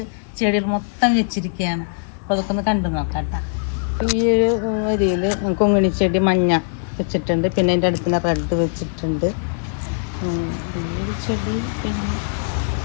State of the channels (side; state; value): right; silent; digital silence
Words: ചെടികൾ മൊത്തം വെച്ചിരിക്കുകയാണ്. അപ്പോൾ അതൊക്കെ ഒന്ന് കണ്ടു നോക്കാം കേട്ടോ. ഈ ഒരു ഏരിയയിൽ കൊങ്ങിണി ചെടി മഞ്ഞ വെച്ചിട്ടുണ്ട്. പിന്നെ അതിൻ്റെ അടുത്തുള്ള റെഡ് വെച്ചിട്ടുണ്ട്. ഈ ഒരു ചെടി പിന്നെ